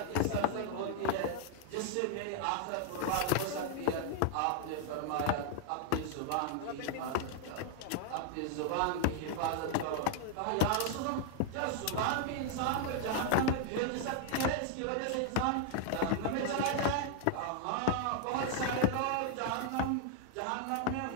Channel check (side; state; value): both; different; correlation 0.00